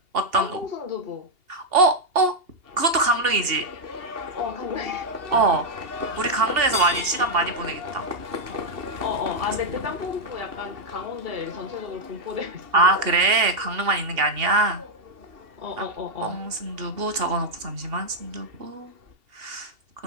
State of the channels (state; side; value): late; left; 2.8 ms